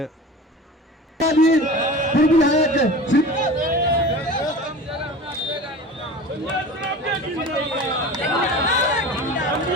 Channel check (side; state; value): both; normal; correlation 0.36